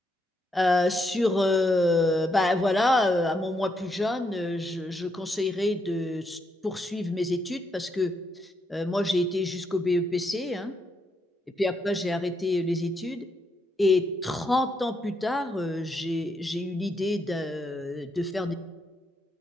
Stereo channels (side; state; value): both; normal; correlation 0.78